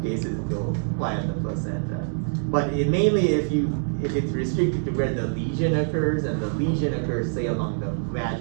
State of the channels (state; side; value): silent; left; 62 dB below the other